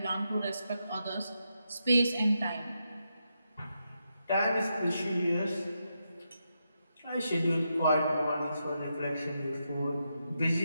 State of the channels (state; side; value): inverted; both; correlation -0.84